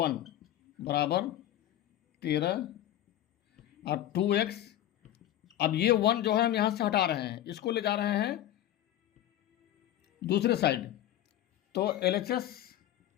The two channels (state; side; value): quieter; right; 12.7 dB